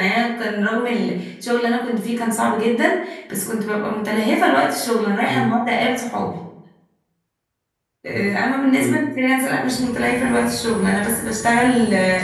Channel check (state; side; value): identical; both; correlation 1.00